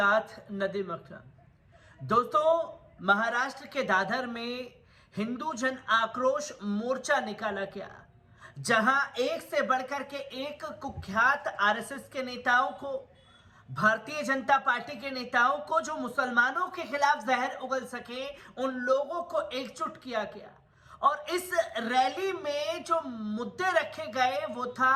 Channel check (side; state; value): both; identical; correlation 1.00